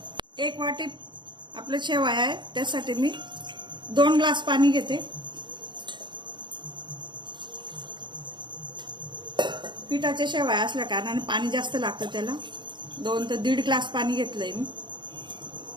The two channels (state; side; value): late; left; 0.22 ms